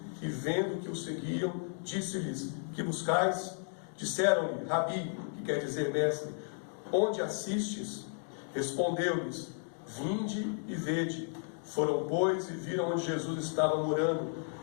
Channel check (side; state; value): right; silent; 55 dB below the other